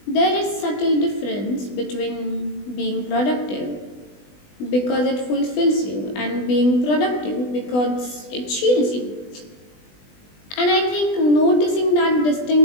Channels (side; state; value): right; late; 20 ms